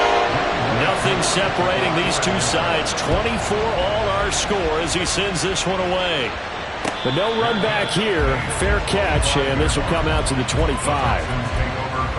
Nothing separating these two sides. 24 all our score as he sends this one away. But no run back here. Fair catch, and this will come out to the 25.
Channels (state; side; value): identical; both; correlation 1.00